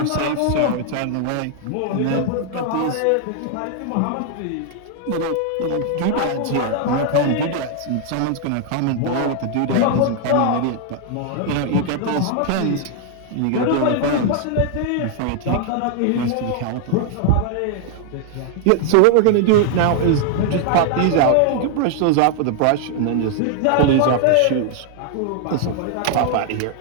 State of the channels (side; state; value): both; different; correlation 0.00